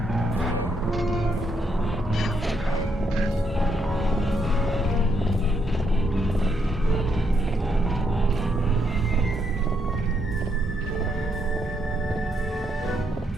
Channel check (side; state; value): both; normal; correlation 0.77